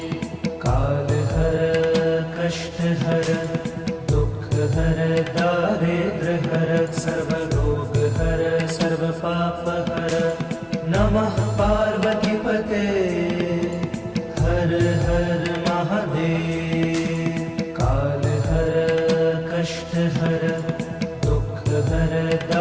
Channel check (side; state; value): both; identical; correlation 1.00